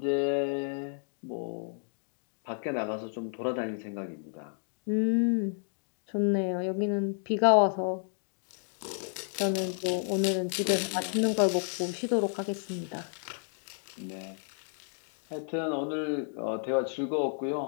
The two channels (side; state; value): right; silent; 56 dB below the other